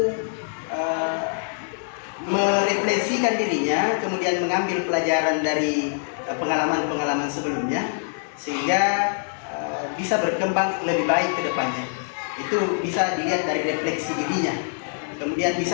merefleksikan dirinya, kemudian mengambil pelajaran dari pengalaman-pengalaman sebelumnya, sehingga bisa berkembang lebih baik ke depannya. Itu bisa dilihat dari refleksi dirinya. Kemudian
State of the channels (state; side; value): silent; right; digital silence